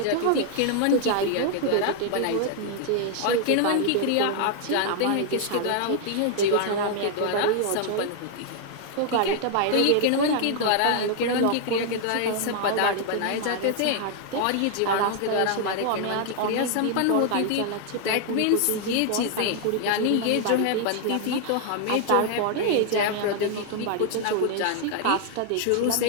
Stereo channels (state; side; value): different; both; correlation 0.00